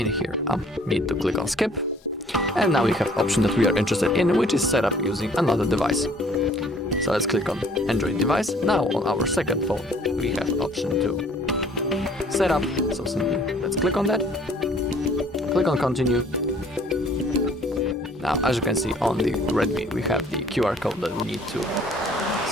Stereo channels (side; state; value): both; normal; correlation 0.57